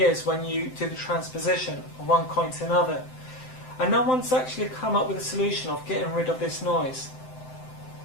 when you do the transposition of one coin to another, and no one's actually come up with a solution of getting rid of this noise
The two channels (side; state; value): right; late; 7.8 ms